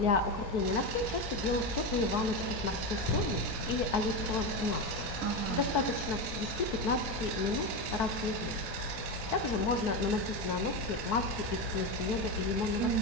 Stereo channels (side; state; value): right; late; 4.6 ms